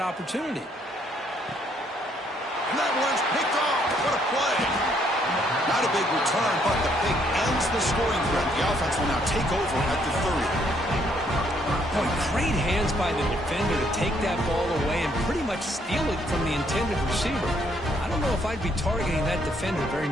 opportunity. And that one's picked off. What a play. Not a big return, but the pick ends the scoring threat. The offense will now take over at the 30. Boy, great hands by the defender to take that ball away and pretty much steal it from the intended receiver. I don't know if I'd be targeting that defender very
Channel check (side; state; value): both; normal; correlation 0.69